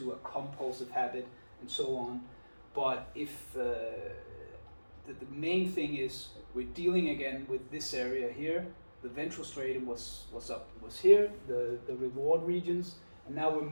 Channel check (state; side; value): inverted; both; correlation -1.00